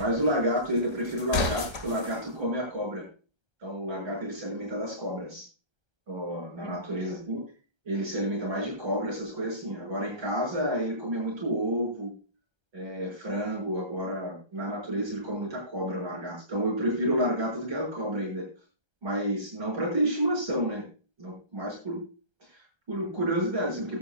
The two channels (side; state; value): left; late; 1.3 ms